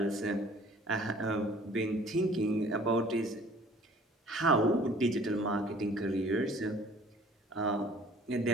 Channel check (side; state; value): both; normal; correlation 0.52